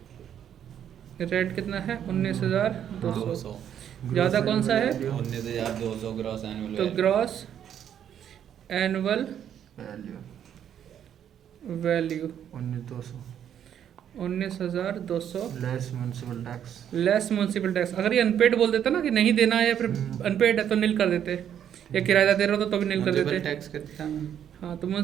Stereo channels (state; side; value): quieter; left; 9.5 dB